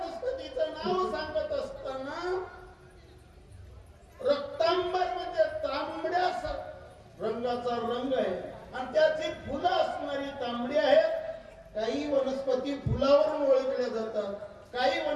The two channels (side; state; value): both; identical; correlation 1.00